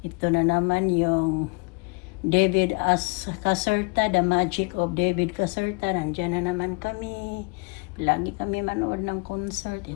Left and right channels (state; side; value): quieter; right; 31.2 dB